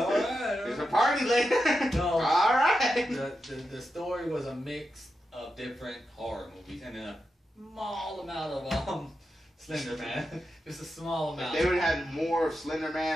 a party later. No. All right. The story was a mix of different horror movies and a small amount of Slender Man. Just a small amount. If they would have had more of Slender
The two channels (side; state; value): both; normal; correlation 0.88